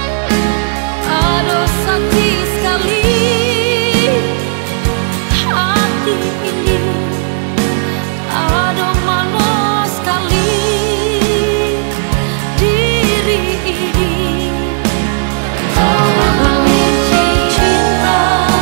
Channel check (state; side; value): silent; left; digital silence